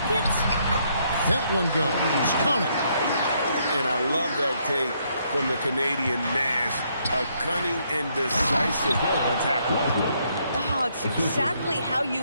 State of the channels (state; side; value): inverted; both; correlation -0.72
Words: That one goes. Count it. And I love that take from the Canadian Nash. A cunning and decisive attack. Oh, it's exactly how